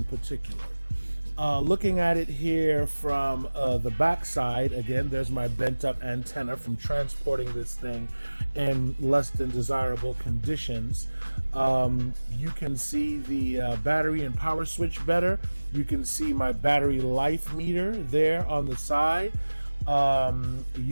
particular. Looking at it here from the back side, again, there's my bent up antenna from transporting this thing in less than desirable conditions. You can see the battery and power switch better. You can see my battery life meter there on the side.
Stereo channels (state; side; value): inverted; both; correlation -1.00